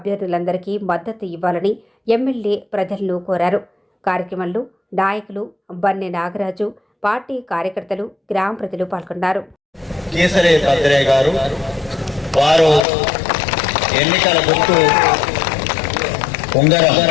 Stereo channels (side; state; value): right; drops out; at 12.9 s